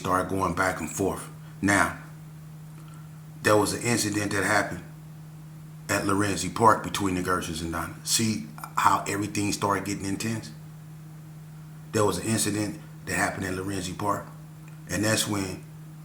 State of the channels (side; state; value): both; identical; correlation 1.00